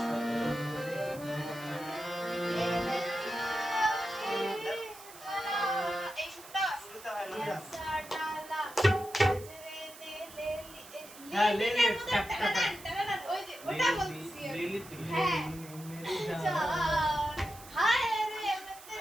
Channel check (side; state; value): right; noise; hiss, 17 dB below the sound